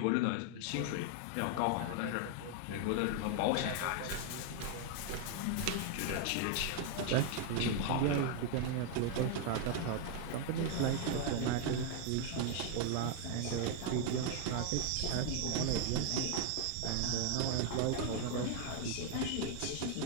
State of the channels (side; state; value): both; different; correlation 0.00